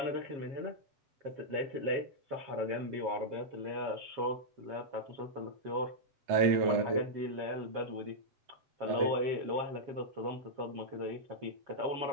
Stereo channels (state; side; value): late; left; 7.3 ms